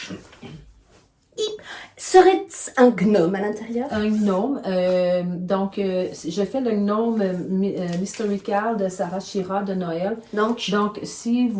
Serait-ce un gnome à l'intérieur? Un gnome. Donc, je fais le gnome Mysterical de Sarah Shira de Noël. Donc, Donc, si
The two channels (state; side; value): identical; both; correlation 1.00